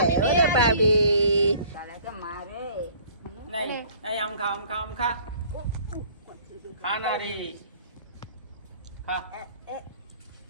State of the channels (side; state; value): both; inverted; correlation -0.52